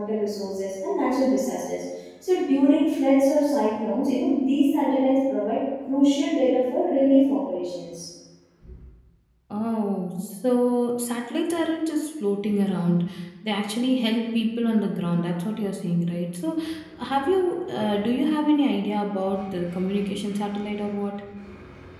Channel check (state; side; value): identical; both; correlation 1.00